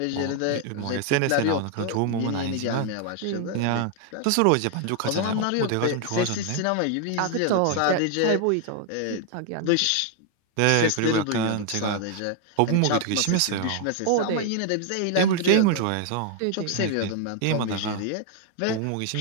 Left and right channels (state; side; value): different; both; correlation 0.00